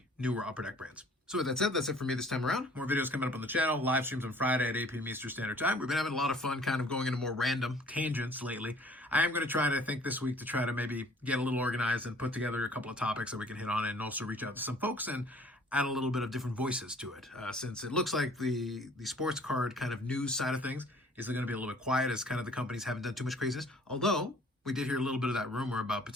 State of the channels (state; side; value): normal; both; correlation 0.54